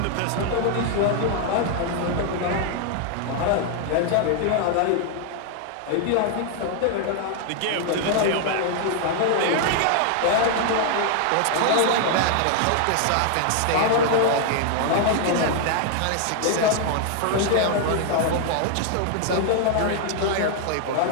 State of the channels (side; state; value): both; different; correlation 0.00